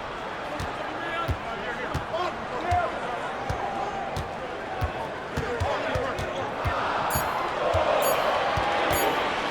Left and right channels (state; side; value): identical; both; correlation 1.00